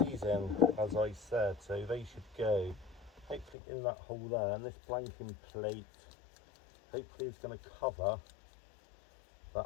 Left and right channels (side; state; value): right; drops out; at 3.6 s